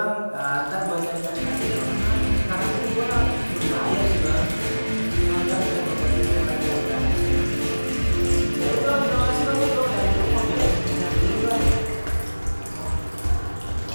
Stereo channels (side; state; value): both; inverted; correlation -1.00